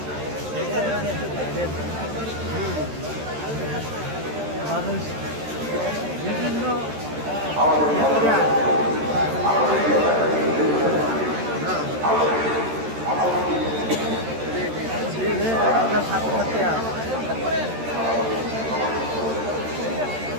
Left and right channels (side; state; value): left; late; 13 ms